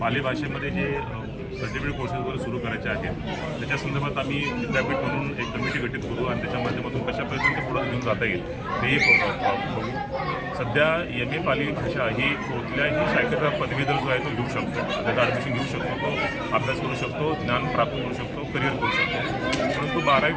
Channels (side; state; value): both; identical; correlation 1.00